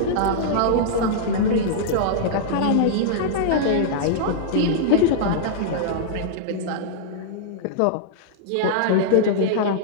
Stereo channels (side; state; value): both; different; correlation -0.02